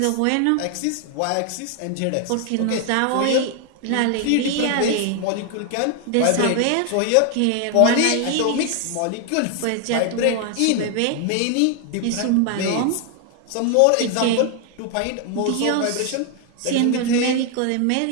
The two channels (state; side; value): different; both; correlation 0.00